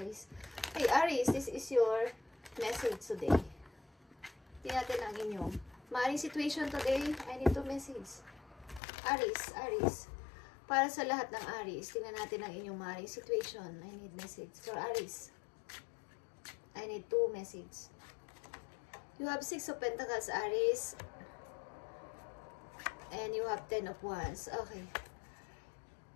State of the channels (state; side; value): drops out; right; at 8.8 s